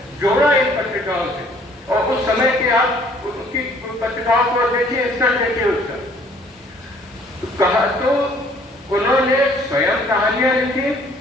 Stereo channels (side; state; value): both; normal; correlation 0.58